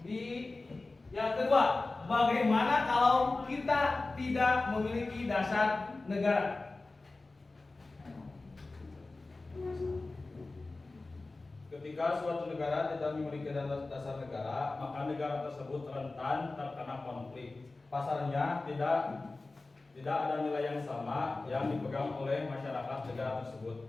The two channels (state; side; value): quieter; right; 3.3 dB